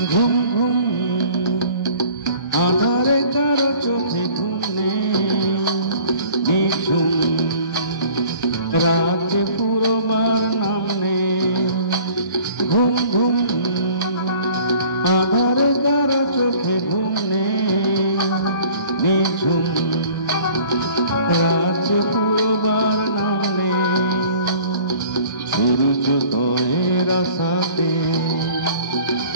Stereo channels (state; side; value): inverted; both; correlation -0.50